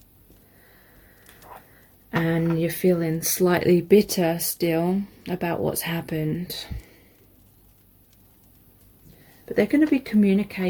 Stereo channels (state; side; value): identical; both; correlation 1.00